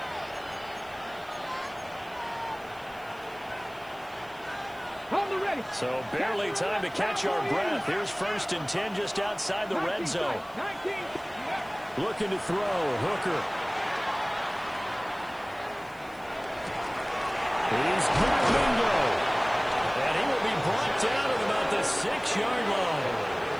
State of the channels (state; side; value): noise; right; hiss, 26 dB below the sound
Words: So barely time to catch our breath. Here's 1st and 10 just outside the red zone. Looking to throw. Hooker. He's good. Bingo. And he will be brought down at about the 6-yard line.